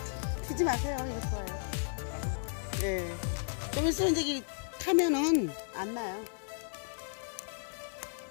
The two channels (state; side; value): silent; right; 55 dB below the other